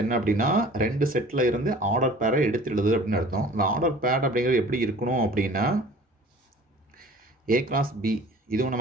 என்ன அப்படின்னா ரெண்டு செட்டில் இருந்து ஆர்டர் பேரை எடுத்துடுது அப்படின்னு அர்த்தம். இந்த ஆர்டர் பேர் அப்படிங்கிறது எப்படி இருக்கணும் அப்படின்னா ஏ கிராஸ் பி, இதுவும்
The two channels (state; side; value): normal; both; correlation 0.46